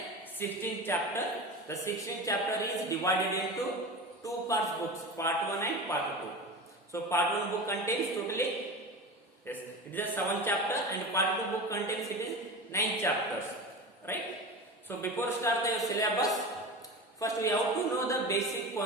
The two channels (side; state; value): both; normal; correlation 0.29